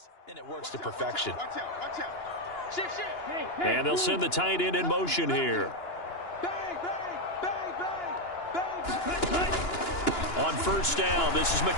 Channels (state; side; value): late; right; 2.9 ms